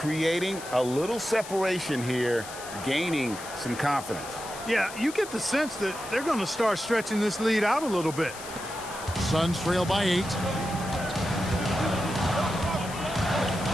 a little separation here, gaining some confidence. Yeah, you get the sense that they're going to start stretching this lead out a little bit. Suns trail by 8.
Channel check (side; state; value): left; noise; hiss, 13 dB below the sound